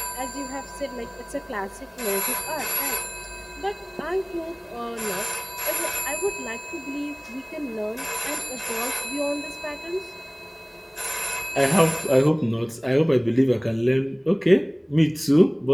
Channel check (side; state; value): both; identical; correlation 1.00